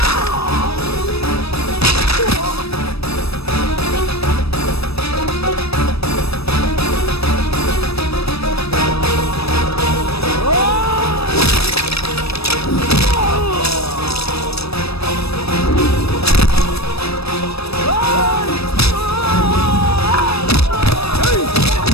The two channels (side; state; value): right; late; 0.78 ms